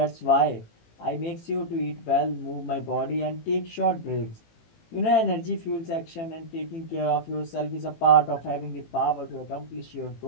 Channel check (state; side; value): late; right; 18 ms